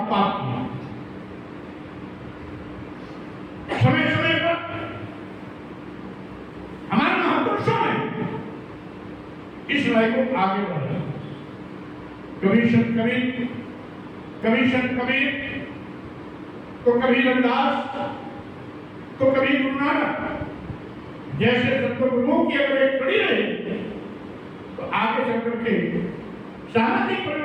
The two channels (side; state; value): both; identical; correlation 1.00